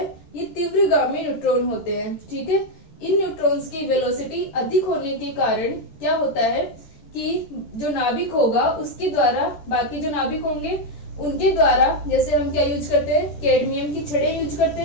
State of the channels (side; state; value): right; late; 13 ms